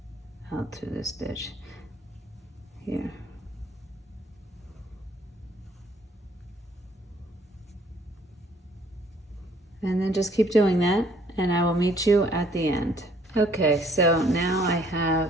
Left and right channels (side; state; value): both; normal; correlation 0.62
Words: out through the stitch here. And then just keep doing that, and I will meet you at the end. Okay, so now I